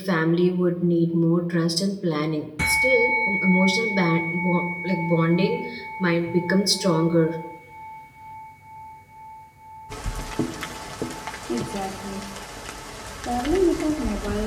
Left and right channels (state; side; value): identical; both; correlation 1.00